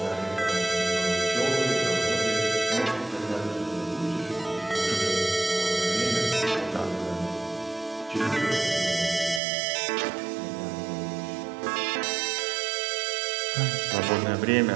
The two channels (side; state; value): left; drops out; at 9.4 s